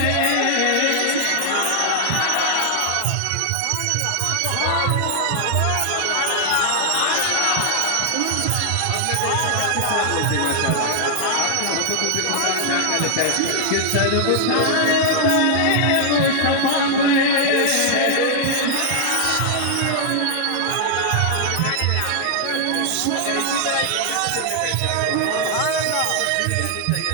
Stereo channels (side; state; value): both; different; correlation -0.01